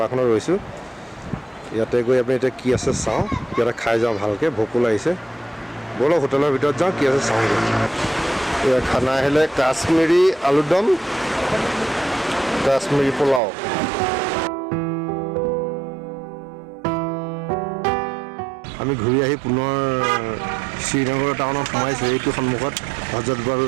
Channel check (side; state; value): left; drops out; at 13.4 s